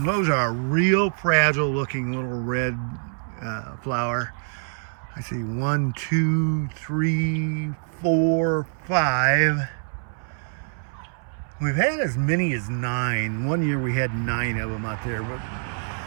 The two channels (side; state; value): left; silent; 62 dB below the other